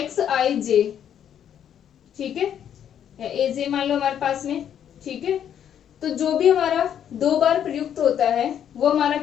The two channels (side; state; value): right; quieter; 9.4 dB